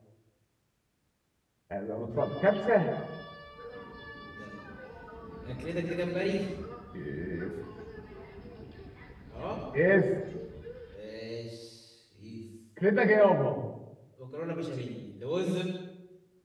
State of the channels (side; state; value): both; identical; correlation 1.00